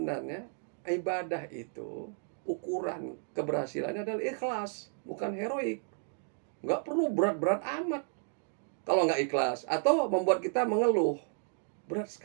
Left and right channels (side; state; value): left; silent; 56 dB below the other